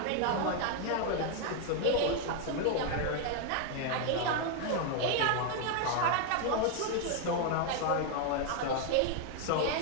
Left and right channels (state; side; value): different; both; correlation 0.01